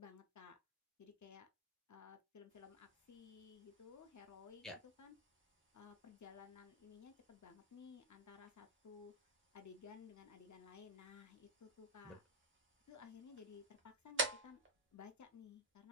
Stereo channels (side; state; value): both; normal; correlation -0.01